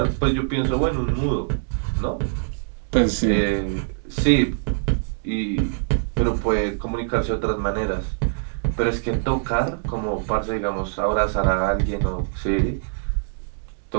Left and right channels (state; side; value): silent; left; digital silence